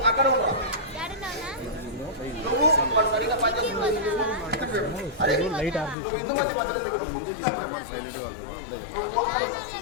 అక్కడ ఉండవు. నువ్వు వాడు సరిగా పనిచేస్తున్నావు. అరే నువ్వు హిందూమతి మందిరం దగ్గర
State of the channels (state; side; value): drops out; right; at 6.0 s